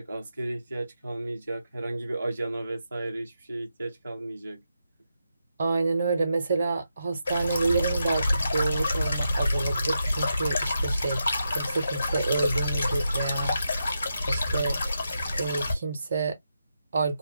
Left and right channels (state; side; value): inverted; both; correlation -0.85